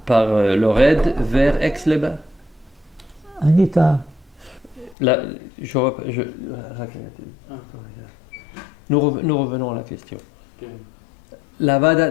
par le raid vers Aix-les-Bains. Anita, nous revenons à la question. La Vada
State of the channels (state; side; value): drops out; right; at 5.0 s